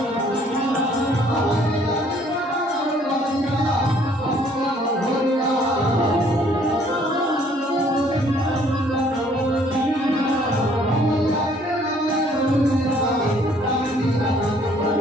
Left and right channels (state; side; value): normal; both; correlation 0.61